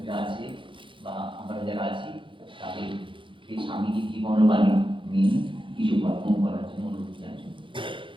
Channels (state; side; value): late; left; 0.24 ms